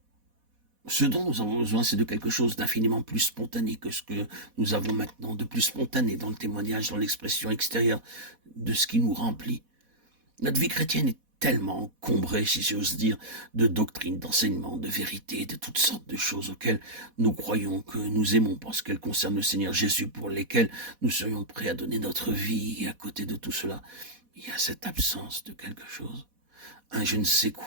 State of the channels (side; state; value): left; late; 4.1 ms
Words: Ce dont nous avons besoin, c'est de quelque chose d'infiniment plus spontané que ce que nous avons maintenant, de plus spontané dans le témoignage, dans l'expression extérieure de ce qui nous remplit. Notre vie chrétienne est tellement encombrée, si j'ose dire, de doctrines, d'enseignements, de vérités, de toutes sortes de choses auxquelles nous croyons que nous aimons parce qu'elles concernent le Seigneur Jésus, pour lesquelles nous serions prêts à donner notre vie. Et à côté de tout cela, il y a cette absence de quelque chose, un je ne sais